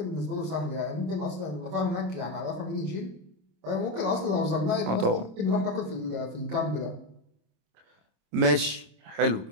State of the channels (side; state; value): left; late; 26 ms